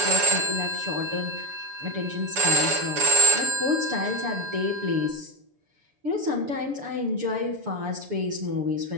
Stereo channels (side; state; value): left; late; 6.9 ms